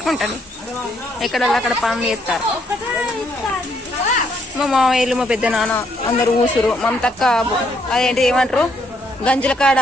ఎక్కడ అక్కడ పనులు చేస్తారు. మా మామయ్యలు మా పెద్ద నాన్న అందరు ఊసురు. మమతక్క అదేంటి ఏమంటారు గంజుల కాడ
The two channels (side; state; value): both; normal; correlation 0.72